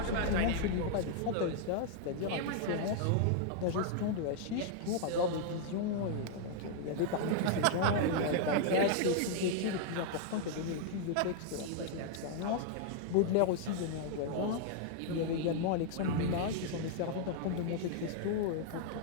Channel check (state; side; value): different; both; correlation 0.00